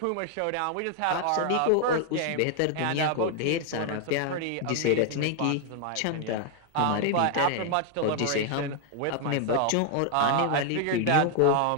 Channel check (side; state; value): both; different; correlation 0.00